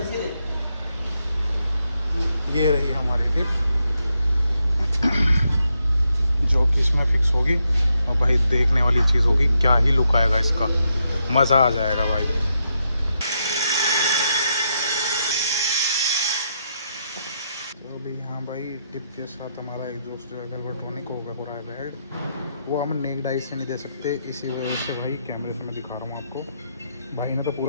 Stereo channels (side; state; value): both; inverted; correlation -0.81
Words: ये रही हमारी टिप जो कि इसमें फिक्स होगी, और भाई देखने वाली चीज़ होगी, क्या ही लुक आएगा इसका, मज़ा आ जाएगा भाई। तो अभी यहाँ भाई टिप के साथ हमारा एग्जॉस्ट जो है वेल्वेट्रॉनिक होगा पूरा बेड, वो हम नेक डाइस से नहीं दे सकते, इसी वजह से भाई कैमरे से मैं दिखा रहा हूँ आपको। भाई ने तो